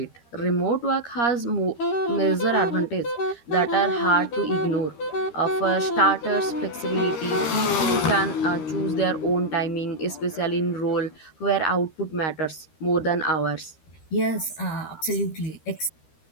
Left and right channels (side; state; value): right; late; 13 ms